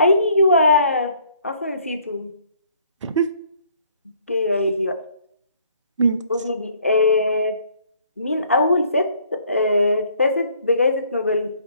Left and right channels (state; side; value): inverted; both; correlation -0.61